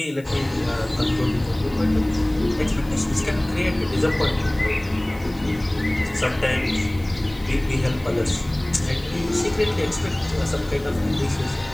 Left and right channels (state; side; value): noise; left; hiss, 26 dB below the sound